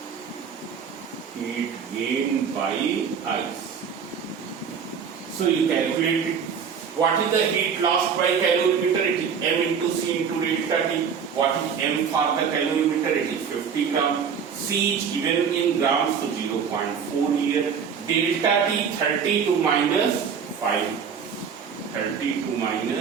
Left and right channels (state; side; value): quieter; left; 6.8 dB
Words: Heat gained by ice. So you calculate it. What is the heat lost by calorimeter? It is m into c into delta T. What is m for the calorimeter? It is 50 gram. C is given in grams, so 0.4 here. Delta T 32 minus 5. 32